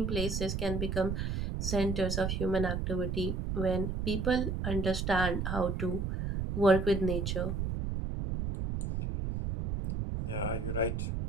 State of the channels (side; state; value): right; noise; rumble, 2 dB below the sound